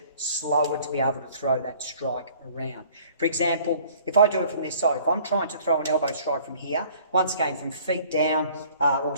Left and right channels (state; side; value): inverted; both; correlation -0.54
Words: slower to be able to throw that strike around. For example, if I do it from this side, if I'm trying to throw an elbow strike from here, once again from feet down or